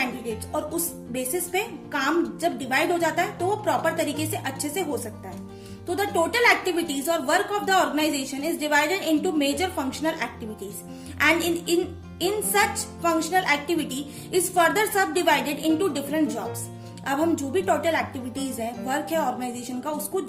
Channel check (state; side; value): identical; both; correlation 1.00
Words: और उस बेसिस पे काम जब डिवाइड हो जाता है तो वो प्रॉपर तरीके से अच्छे से हो सकता है। तो द टोटल एक्टिविटीज और work of the organisation is divided into major functional activities and in such functional activity is further subdivided into different jobs। अब हम जो भी टोटल एक्टिविटीज है, वर्क है ऑर्गेनाइजेशन का, उसको